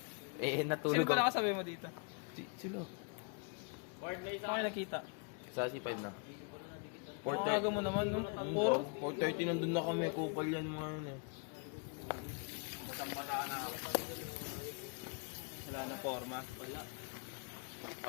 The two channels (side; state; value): right; quieter; 36.4 dB